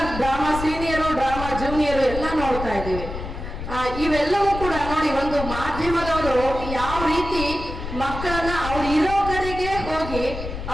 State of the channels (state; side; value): noise; left; rumble, 8 dB below the sound